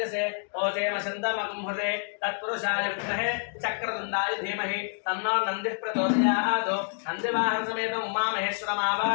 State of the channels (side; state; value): right; silent; digital silence